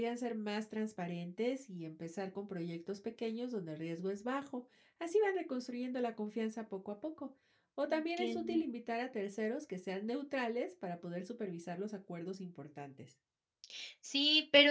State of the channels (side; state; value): both; identical; correlation 1.00